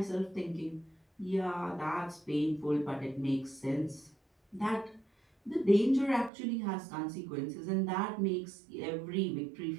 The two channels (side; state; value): left; drops out; at 6.3 s